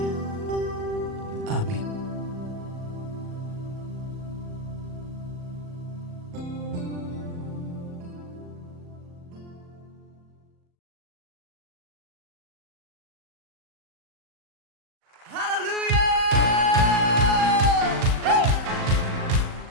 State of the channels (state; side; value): late; left; 38 ms